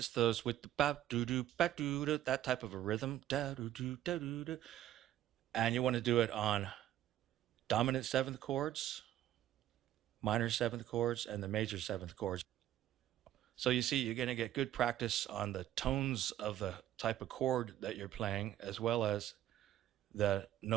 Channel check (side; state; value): left; quieter; 12.6 dB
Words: those with the ba-doo-doo, ba-doo-doo, that type of a rhythm, da-doo-doo, da-doo-doo. And you want to do it on dominant seventh chords, minor seventh chords, and the major seventh chords. So you see, you're going to get good practice on the tones of the type of chord that you're playing, as well as the